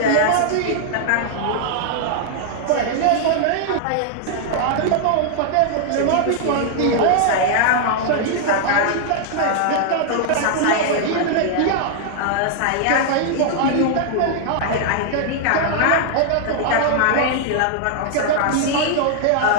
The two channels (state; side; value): different; both; correlation -0.01